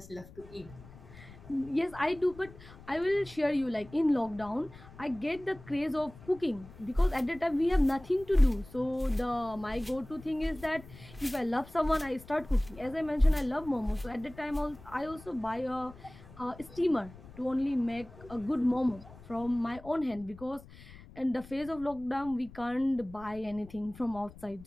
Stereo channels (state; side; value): noise; left; rumble, 19 dB below the sound